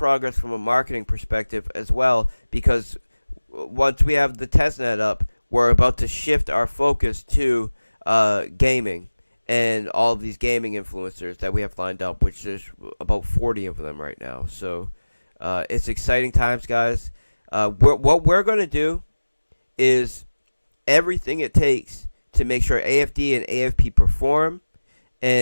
from a marketing perspective as well, because once we have the testnet up, we're about to shift our focus to gaming and all of these gaming influencers that we have lined up, which there's about 40 of them right now. So it's exciting times, guys. What we're going to do is everything it takes to make sure AFD and AFP perform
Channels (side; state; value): both; inverted; correlation -1.00